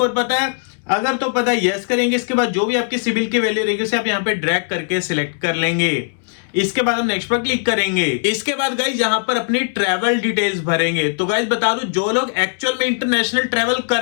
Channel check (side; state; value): right; silent; digital silence